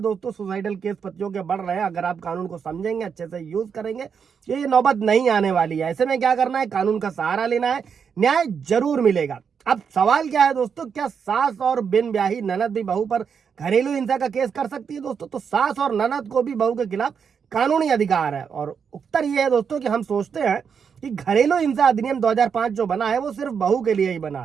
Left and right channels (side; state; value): left; quieter; 6.7 dB